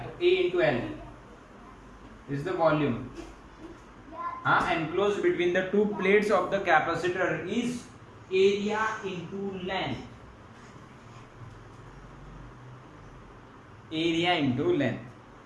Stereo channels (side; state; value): both; identical; correlation 1.00